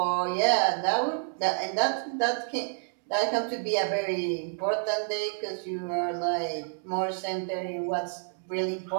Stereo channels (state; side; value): silent; left; digital silence